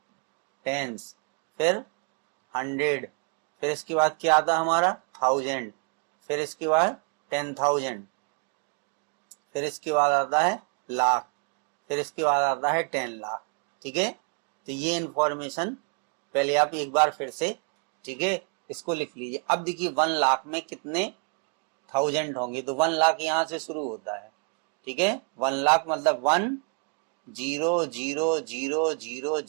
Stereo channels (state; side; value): quieter; left; 35.7 dB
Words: टेंस, फिर 100, फिर इसके बाद क्या आता है हमारा 1000, फिर इसके बाद 10,000, फिर इसके बाद आता है लाख, फिर इसके बाद आता है 10 लाख, ठीक है। तो ये इंफॉर्मेशन पहले आप एक बार फिर से, ठीक है, इसको लिख लीजिए। अब देखिए 1 लाख में कितने 1000 होंगे, तो 1 लाख यहां से शुरू होता है, ठीक है। 1 लाख मतलब 1 0 0 0 0